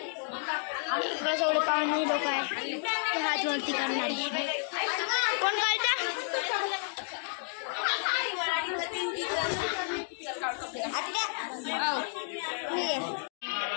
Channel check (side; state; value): right; silent; 57 dB below the other